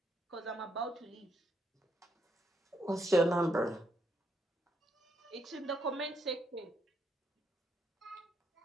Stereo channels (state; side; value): normal; both; correlation 0.77